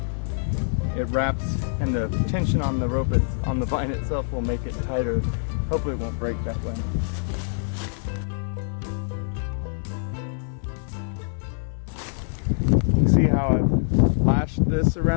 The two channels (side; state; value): right; silent; 62 dB below the other